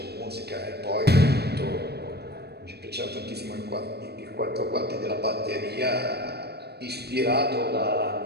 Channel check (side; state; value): left; late; 0.47 ms